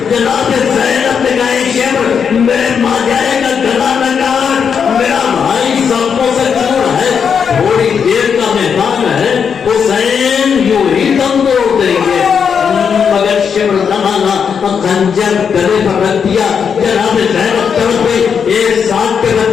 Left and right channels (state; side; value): quieter; right; 6.8 dB